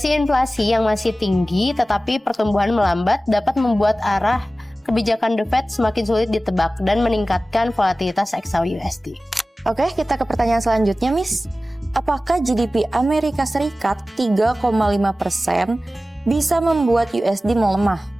inflasi yang masih tinggi tetapi pertumbuhan melambat dapat membuat arah kebijakan The Fed semakin sulit ditebak dan meningkatkan volatilitas XAU-USD. Oke, kita ke pertanyaan selanjutnya, Miss. Apakah GDP Amerika Serikat 3,5% bisa membuat USD melemah?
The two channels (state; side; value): normal; both; correlation 0.96